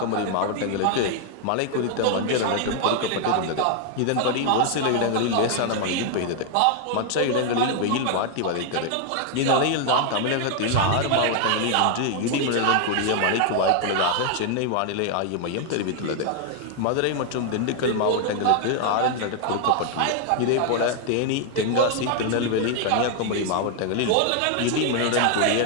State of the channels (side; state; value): both; different; correlation 0.00